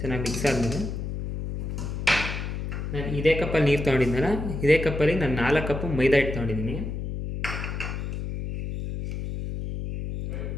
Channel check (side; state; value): left; noise; hum, 5 dB below the sound